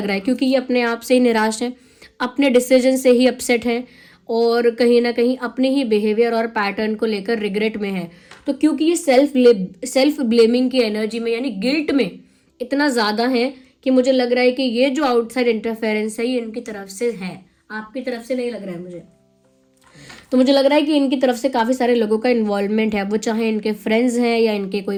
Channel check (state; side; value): identical; both; correlation 1.00